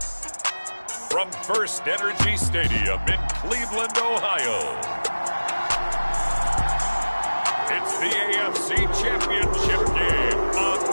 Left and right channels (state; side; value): inverted; both; correlation -1.00